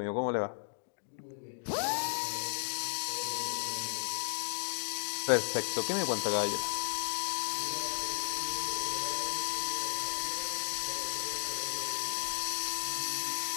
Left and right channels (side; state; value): right; silent; digital silence